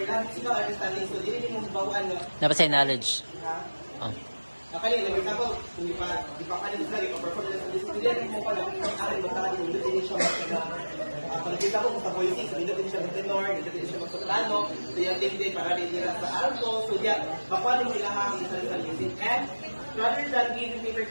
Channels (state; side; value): inverted; both; correlation -1.00